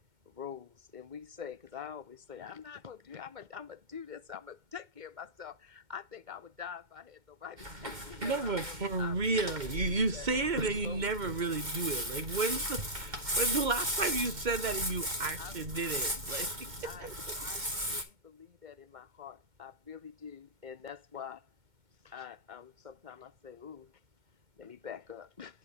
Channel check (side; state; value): left; late; 2.2 ms